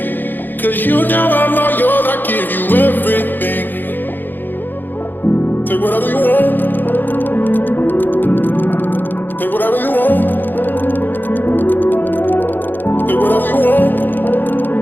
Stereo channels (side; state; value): right; late; 0.090 ms